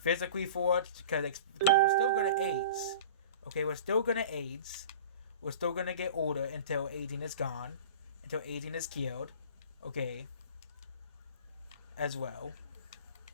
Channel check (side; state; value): both; inverted; correlation -0.39